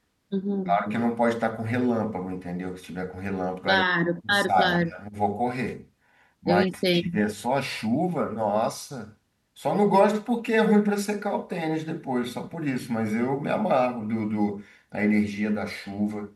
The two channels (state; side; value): identical; both; correlation 1.00